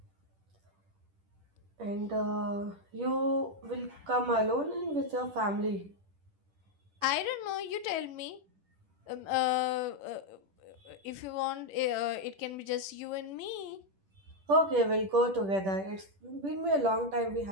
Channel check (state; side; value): late; left; 9.9 ms